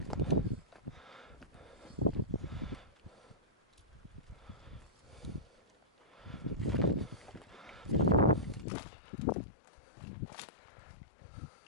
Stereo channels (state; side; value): drops out; right; at 8.7 s